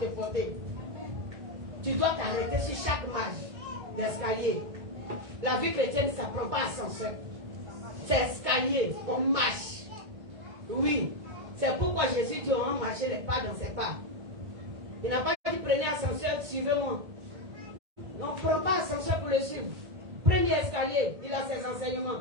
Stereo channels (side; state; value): left; late; 1.8 ms